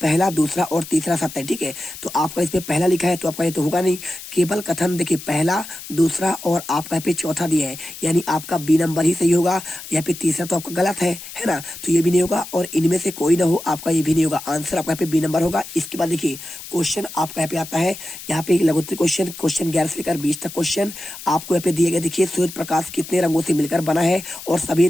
दूसरा और तीसरा सत्य है, ठीक है। तो आपका इसमें पहला लिखा है तो आपका ये तो होगा नहीं। केवल कथन देखिए पहला दूसरा और आपका यहाँ पे चौथा दिया है, यानी आपका बी नंबर ही सही होगा, यहाँ पे तीसरा तो आपका गलत है ना, तो ये भी नहीं होगा। और इनमें से कोई ना हो आपका ये भी नहीं होगा, आंसर आपका यहाँ पे बी नंबर होगा। इसके बाद देखिए क्वेश्चन आपका यहाँ पे आता है, यहाँ पे एक लघुत्तरी क्वेश्चन 11 से लेकर 20 तक क्वेश्चन आपको यहाँ पे दिए गए। देखिए सूर्य प्रकाश कितने रंगों से मिलकर बना है और सभी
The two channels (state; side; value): noise; left; hiss, 13 dB below the sound